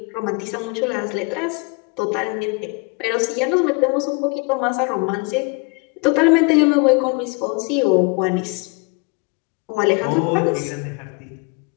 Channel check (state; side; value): quieter; right; 31.2 dB